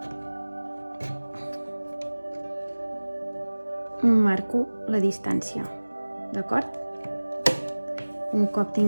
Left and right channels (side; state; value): both; inverted; correlation -1.00